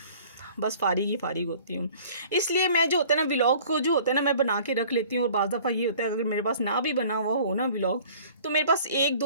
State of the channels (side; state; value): both; inverted; correlation -0.50